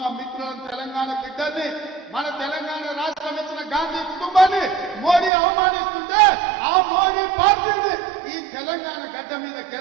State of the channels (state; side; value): drops out; left; at 5.3 s